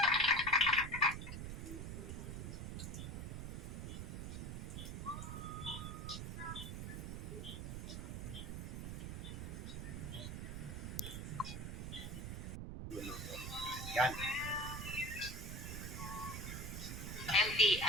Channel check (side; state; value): right; noise; rumble, 5 dB below the sound